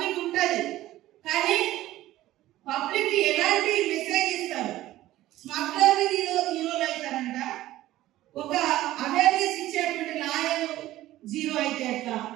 ఉంటుంది, కానీ పబ్లిక్ ఎలాంటి మెసేజ్ ఇస్తారు? స్మగ్లర్ హీరోలు అవుతారంట, ఒక అవేర్నెస్ ఇచ్చేటువంటి లాయర్ జీరో అయితే ఎట్లా?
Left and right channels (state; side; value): quieter; left; 15.3 dB